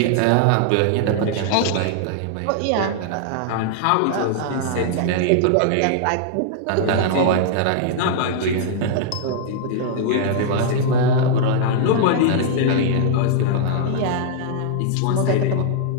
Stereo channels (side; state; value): both; different; correlation -0.01